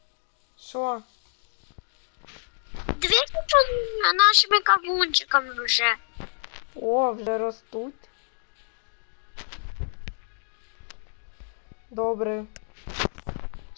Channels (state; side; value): silent; right; digital silence